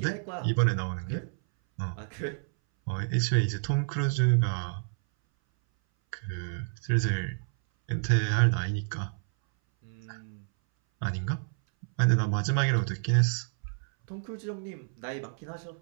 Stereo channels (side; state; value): left; silent; 58 dB below the other